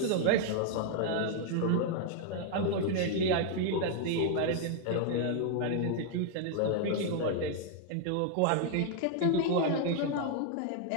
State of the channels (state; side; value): different; both; correlation 0.00